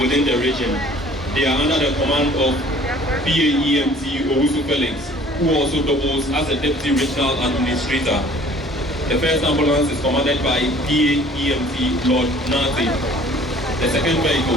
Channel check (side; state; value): both; normal; correlation 0.52